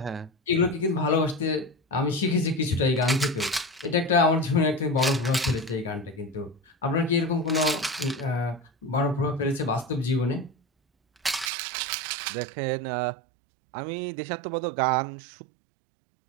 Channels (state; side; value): drops out; left; at 11.5 s